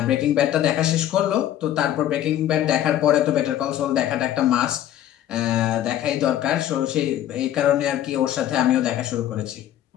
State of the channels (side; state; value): right; quieter; 11.8 dB